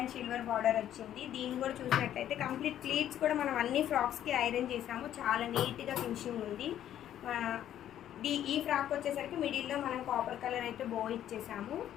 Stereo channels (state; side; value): quieter; right; 11.2 dB